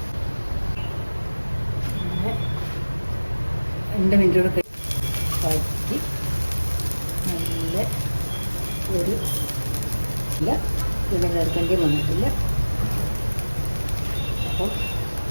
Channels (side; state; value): both; inverted; correlation -1.00